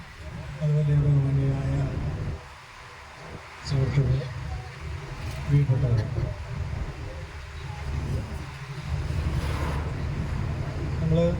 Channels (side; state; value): both; identical; correlation 1.00